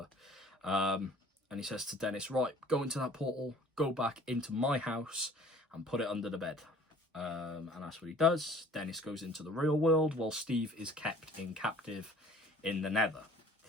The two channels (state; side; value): normal; both; correlation 0.52